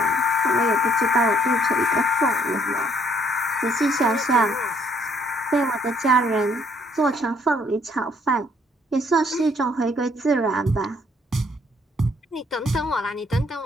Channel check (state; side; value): normal; both; correlation 0.65